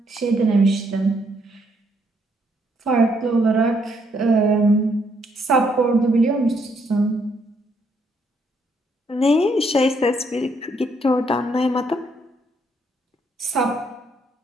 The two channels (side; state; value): both; normal; correlation 0.72